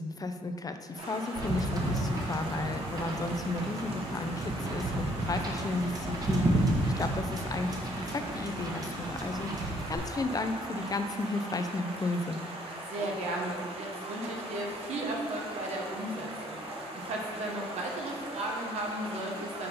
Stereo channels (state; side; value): normal; both; correlation 0.63